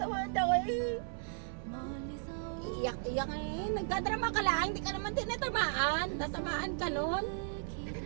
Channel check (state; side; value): silent; left; 54 dB below the other